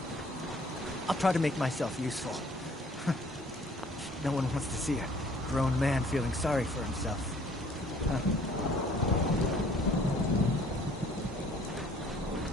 I'll try to make myself useful. No one wants to see a grown man feeling sorry for himself. Huh.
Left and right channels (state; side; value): normal; both; correlation 0.56